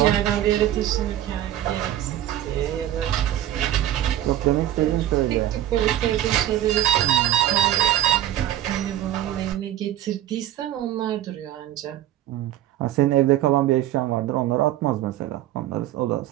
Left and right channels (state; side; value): quieter; left; 12.7 dB